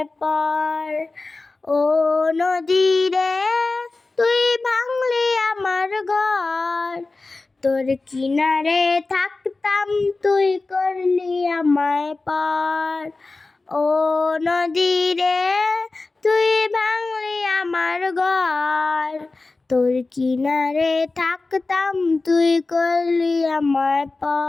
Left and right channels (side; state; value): right; quieter; 3.5 dB